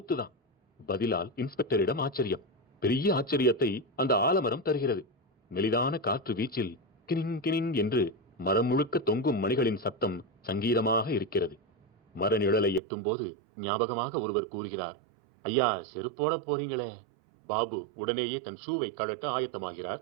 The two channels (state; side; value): drops out; left; at 12.8 s